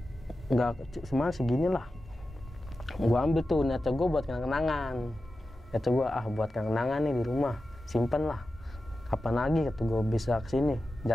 nggak semua segini lah. Gue ambil tuh, niatnya gue buat kenang-kenangan, buat kenang-kenangan nih di rumah, simpen lah, kapan lagi kata gue bisa kesini.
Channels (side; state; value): both; normal; correlation 0.93